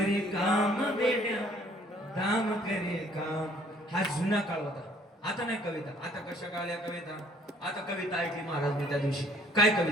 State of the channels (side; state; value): both; normal; correlation 0.59